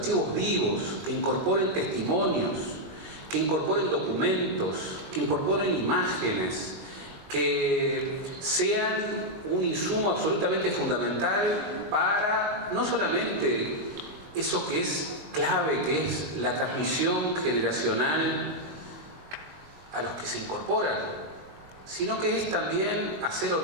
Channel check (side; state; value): left; late; 22 ms